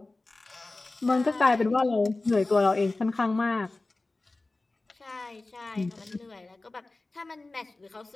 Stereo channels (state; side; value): quieter; right; 3.2 dB